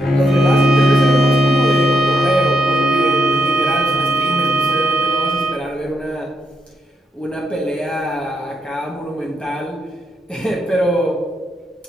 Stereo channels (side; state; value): both; normal; correlation 0.79